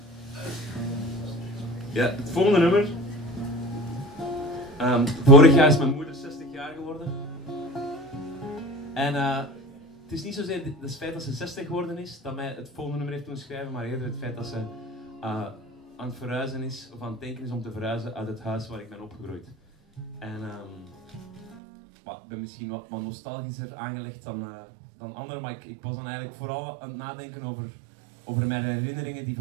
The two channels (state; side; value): drops out; left; at 21.6 s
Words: Ja, het volgende nummer. Vorig jaar is mijn moeder 60 jaar geworden. En het is niet zozeer het feit dat ze 60 geworden is dat mij het volgende nummer heeft doen schrijven, maar eerder het feit dat ze aan het verhuizen is, of aan het denken is om te verhuizen uit het huis waar ik ben opgegroeid. En ik ben misschien wat nostalgischer aangelegd dan anderen, maar ik was dan eigenlijk vooral aan het nadenken over mijn herinneringen die